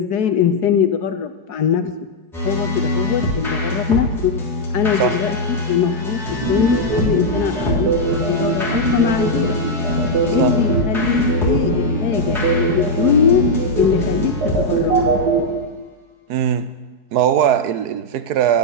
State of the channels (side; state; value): left; late; 4.7 ms